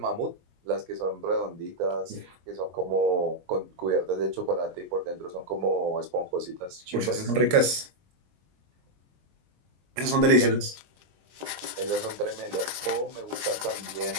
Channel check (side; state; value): left; late; 22 ms